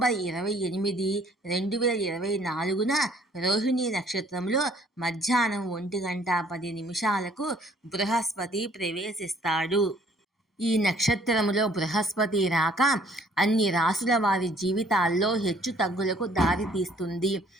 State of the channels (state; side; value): normal; both; correlation 0.59